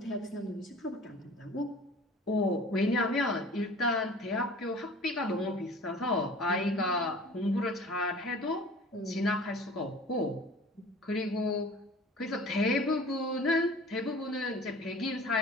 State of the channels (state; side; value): normal; both; correlation 0.44